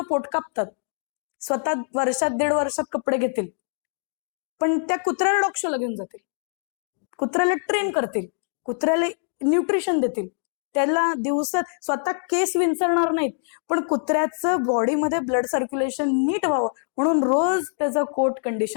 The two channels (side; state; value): right; silent; digital silence